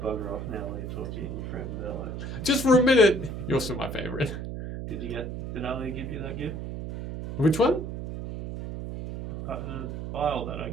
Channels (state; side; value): noise; right; hum, 6 dB below the sound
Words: off now while you talk to you and your friend Velo. Just for a minute. You're still my favorite. Did Ali give you that gift? Which one? The vial that I